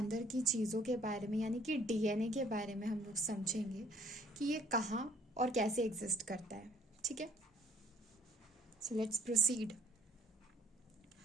की चीज़ों के बारे में, यानी कि डीएनए के बारे में हम लोग समझेंगे कि ये कहाँ और कैसे एग्जिस्ट करता है। ठीक है, सो लेट्स प्रोसीड।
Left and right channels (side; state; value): both; normal; correlation 0.58